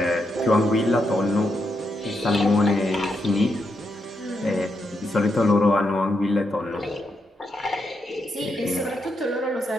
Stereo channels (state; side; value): normal; both; correlation 0.82